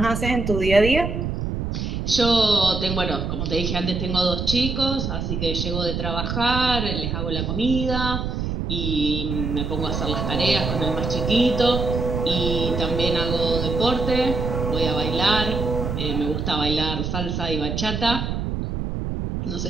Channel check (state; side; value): noise; right; rumble, 3 dB below the sound